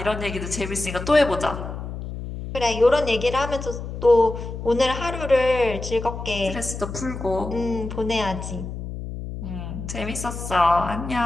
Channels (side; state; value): left; noise; hum, 8 dB below the sound